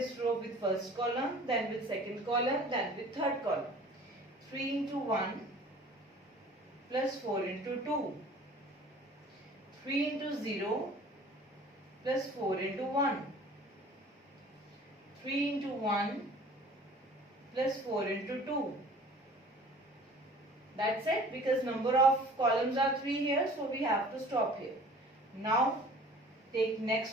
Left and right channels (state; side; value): normal; both; correlation 0.47